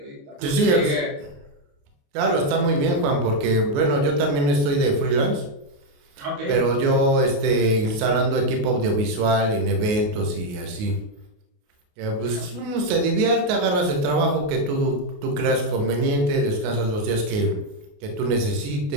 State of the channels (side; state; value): left; late; 28 ms